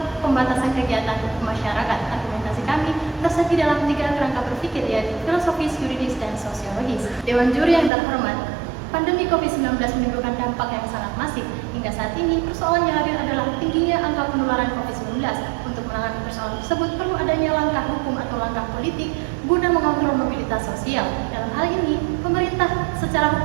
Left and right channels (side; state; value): left; drops out; at 7.9 s